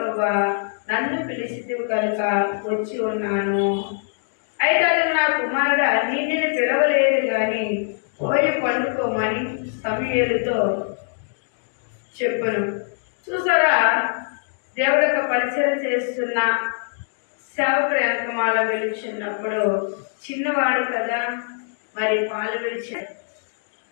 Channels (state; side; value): silent; right; digital silence